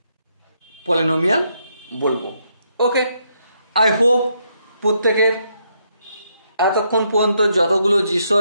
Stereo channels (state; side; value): inverted; both; correlation -0.77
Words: পলিনোমিয়াল বলবো। ওকে, আই হোপ প্রত্যেকের এতক্ষণ পর্যন্ত যতগুলো